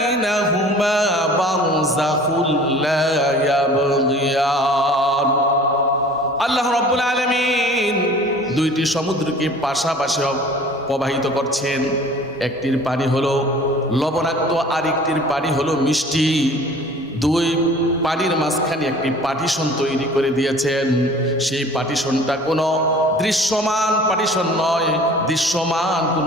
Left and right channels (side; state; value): both; normal; correlation 0.47